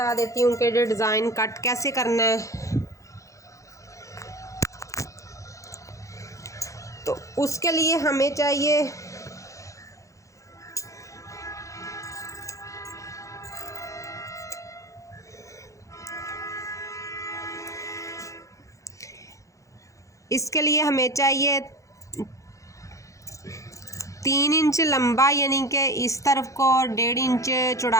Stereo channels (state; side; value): late; right; 0.15 ms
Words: देती हूँ कि डिज़ाइन कट कैसे करना है। तो उसके लिए हमें चाहिए इसके लिए हमें चाहिए 3 इंच लंबा, यानी कि इस तरफ को, और 1.5 इंच